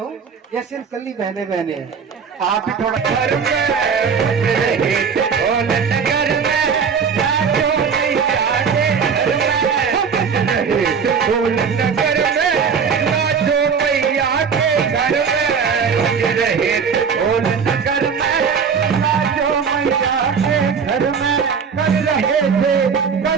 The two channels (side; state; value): left; quieter; 6.2 dB